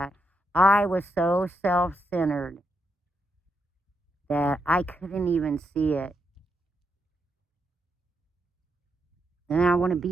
I was so self-centered that I couldn't even see it. And I want to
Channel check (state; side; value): normal; both; correlation 0.81